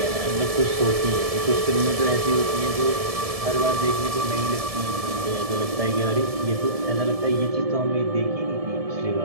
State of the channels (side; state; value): left; late; 1.7 ms